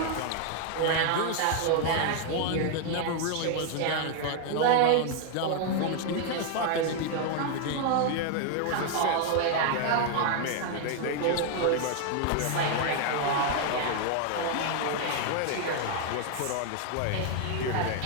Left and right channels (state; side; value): different; both; correlation 0.00